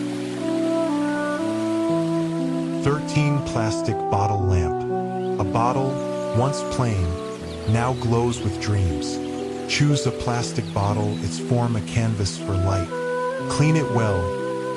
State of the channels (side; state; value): both; identical; correlation 1.00